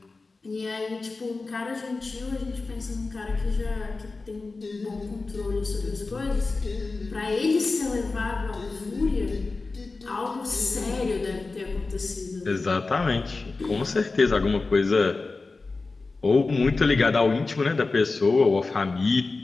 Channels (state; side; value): quieter; right; 3.8 dB